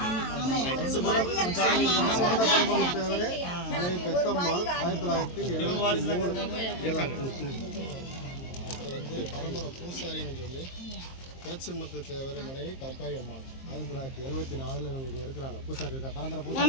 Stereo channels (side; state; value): right; late; 23 ms